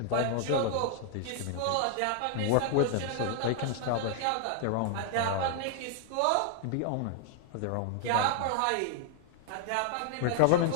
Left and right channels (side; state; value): both; different; correlation 0.00